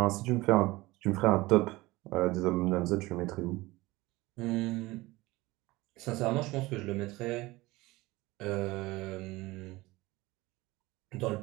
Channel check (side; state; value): left; quieter; 20.3 dB